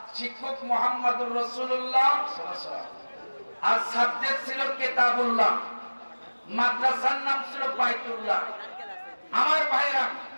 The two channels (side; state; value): both; inverted; correlation -1.00